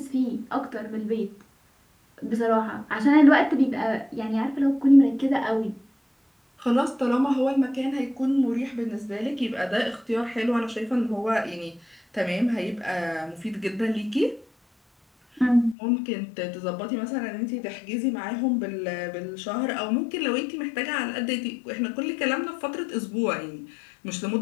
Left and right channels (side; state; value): right; drops out; at 15.8 s